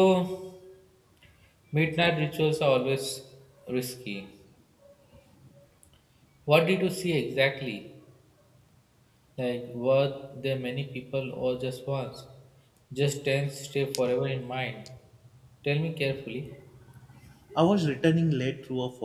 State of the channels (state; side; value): identical; both; correlation 1.00